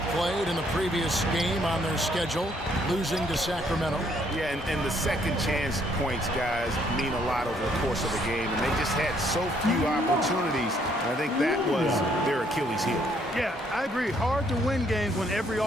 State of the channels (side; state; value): both; normal; correlation 0.68